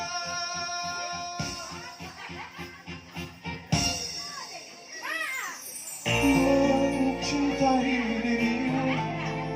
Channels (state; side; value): identical; both; correlation 1.00